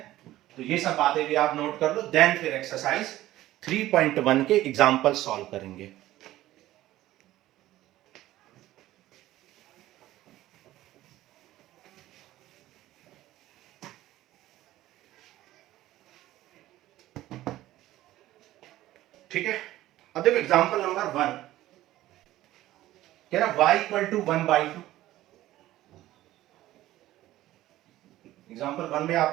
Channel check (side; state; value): left; quieter; 15.2 dB